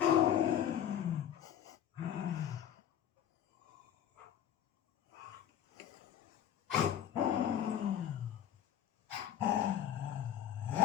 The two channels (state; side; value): quieter; right; 9.8 dB